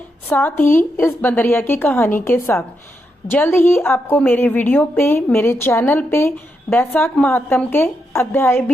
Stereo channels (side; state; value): both; normal; correlation 0.83